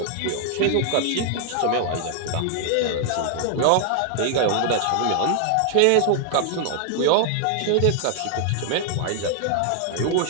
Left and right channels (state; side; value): different; both; correlation 0.00